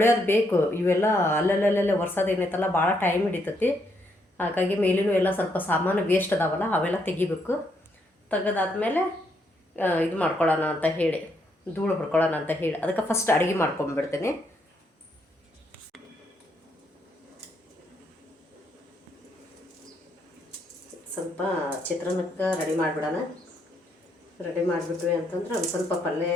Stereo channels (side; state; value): both; normal; correlation 0.75